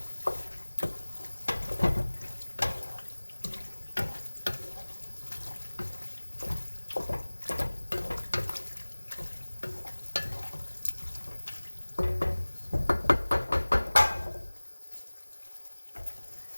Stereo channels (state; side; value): inverted; both; correlation -1.00